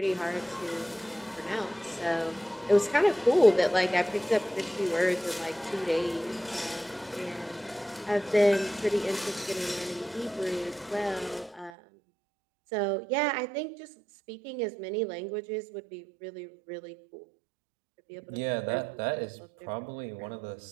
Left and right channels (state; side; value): drops out; left; at 11.7 s